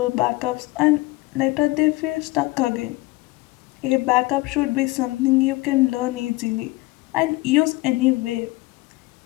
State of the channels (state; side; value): quieter; right; 21.1 dB